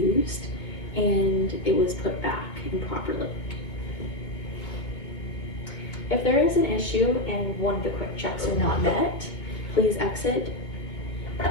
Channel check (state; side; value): late; right; 2.4 ms